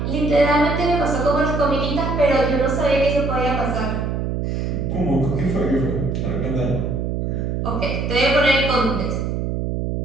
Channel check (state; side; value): noise; right; hum, 1 dB below the sound